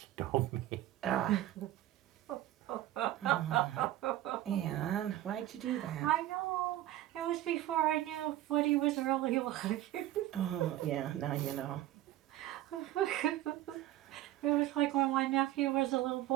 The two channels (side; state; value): left; quieter; 14.0 dB